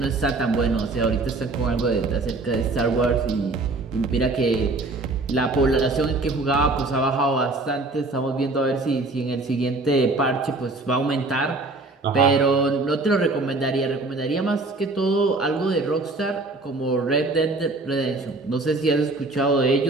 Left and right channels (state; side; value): quieter; left; 3.3 dB